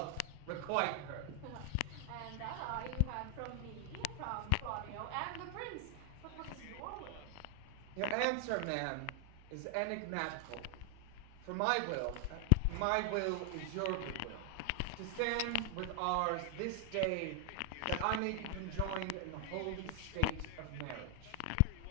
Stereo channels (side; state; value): both; different; correlation 0.00